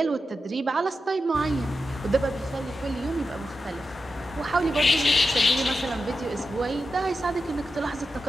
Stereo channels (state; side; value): normal; both; correlation 0.90